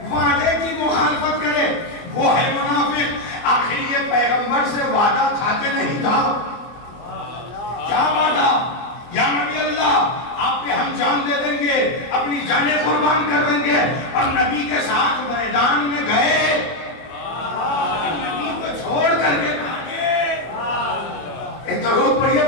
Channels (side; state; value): right; late; 24 ms